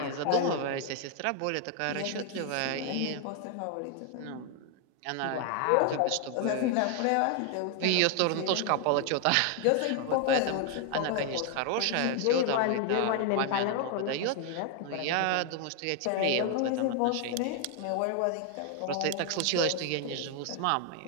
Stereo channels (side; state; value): both; different; correlation 0.00